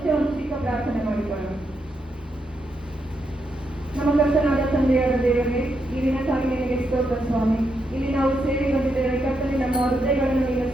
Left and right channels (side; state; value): both; normal; correlation 0.81